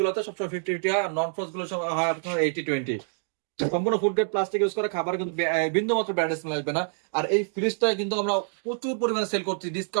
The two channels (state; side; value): silent; left; digital silence